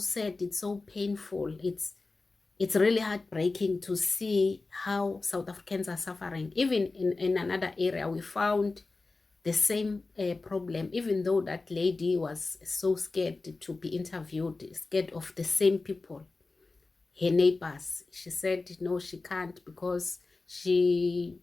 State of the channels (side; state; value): right; quieter; 3.6 dB